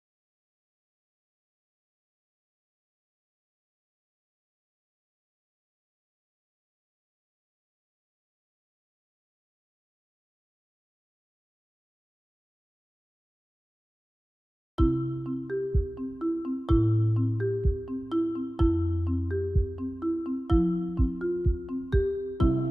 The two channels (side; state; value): both; normal; correlation 0.97